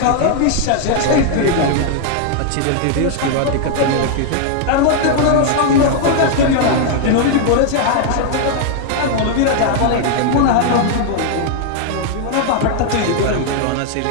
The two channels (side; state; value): both; different; correlation 0.00